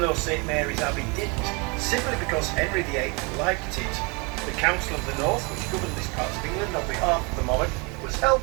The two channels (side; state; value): left; quieter; 30.1 dB